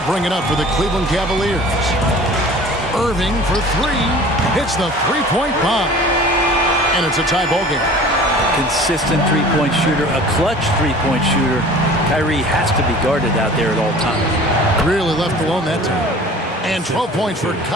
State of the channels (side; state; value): both; normal; correlation 0.44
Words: bring it up for the Cleveland Cavaliers. Irving for three. Hits the three-point bomb. And it's a tie ball game. Consistent three-point shooter, a clutch three-point shooter. Kyrie has to be guarded out there at all times. Really left alone that time. And 12 points for